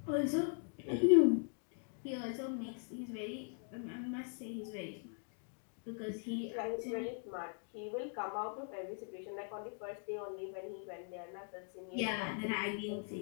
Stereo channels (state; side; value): silent; right; 51 dB below the other